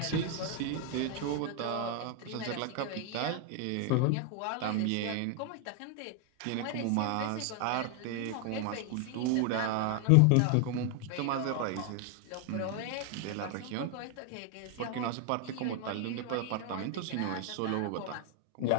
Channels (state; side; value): different; both; correlation 0.00